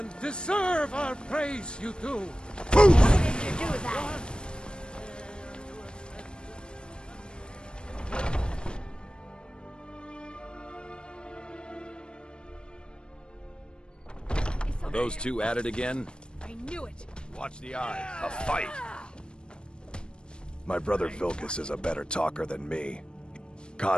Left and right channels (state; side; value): late; right; 0.052 ms